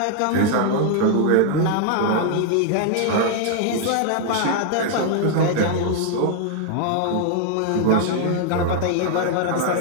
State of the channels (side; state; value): both; different; correlation 0.00